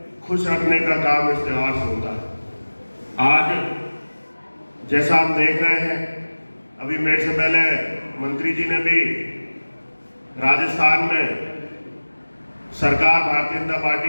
खुश रखने का काम इस त्योहार से होता है। आज जैसा हम देख रहे हैं, अभी मेरे से पहले मंत्री जी ने भी राजस्थान में सरकार भारतीय जनता पार्टी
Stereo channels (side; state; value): both; inverted; correlation -1.00